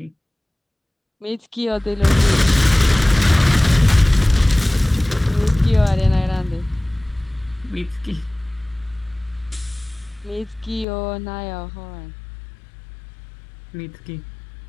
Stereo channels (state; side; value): drops out; right; at 10.9 s